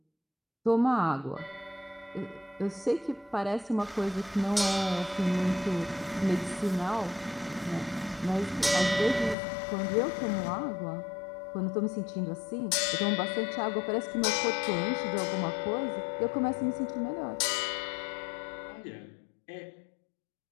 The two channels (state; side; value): drops out; right; at 9.3 s